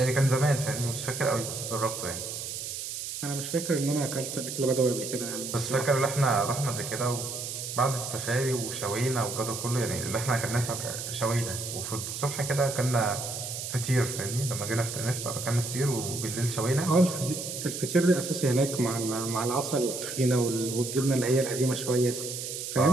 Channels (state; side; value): noise; right; hiss, 6 dB below the sound